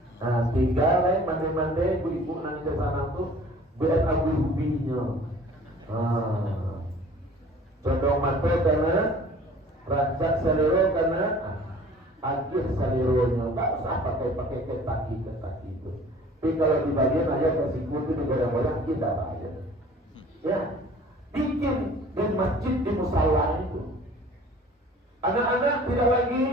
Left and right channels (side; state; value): both; normal; correlation 0.49